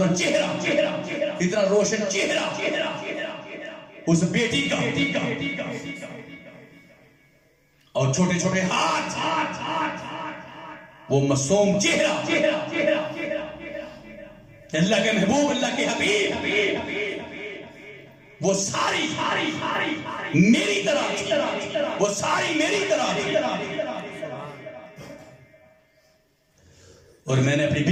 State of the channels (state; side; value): identical; both; correlation 1.00